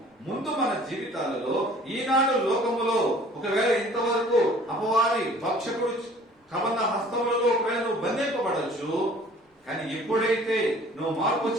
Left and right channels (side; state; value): both; normal; correlation 0.52